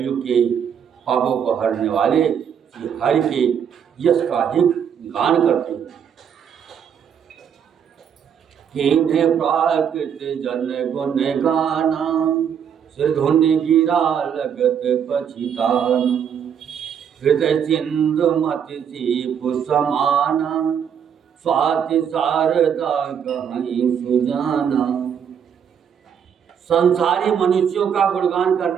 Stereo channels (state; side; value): quieter; left; 8.0 dB